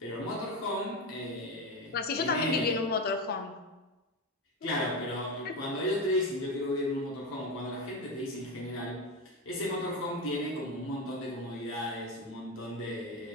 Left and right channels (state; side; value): normal; both; correlation 0.16